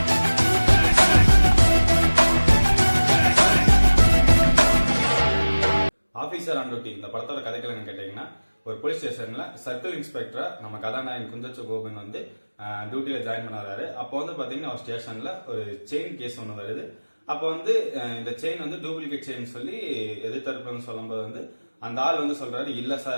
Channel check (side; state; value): both; inverted; correlation -1.00